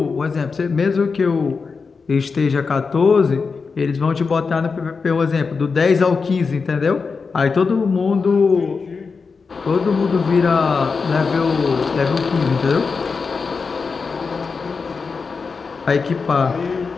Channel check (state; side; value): quieter; right; 4.9 dB